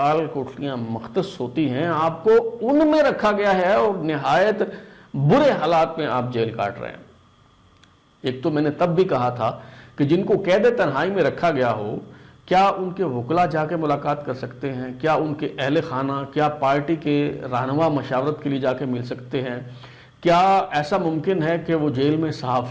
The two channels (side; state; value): both; identical; correlation 1.00